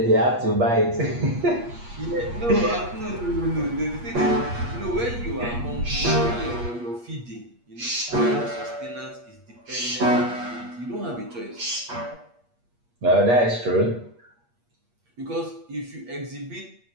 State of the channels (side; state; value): left; late; 8.4 ms